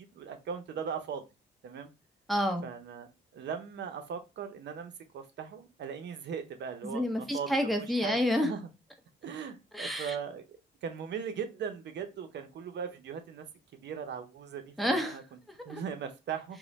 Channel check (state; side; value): normal; both; correlation 0.60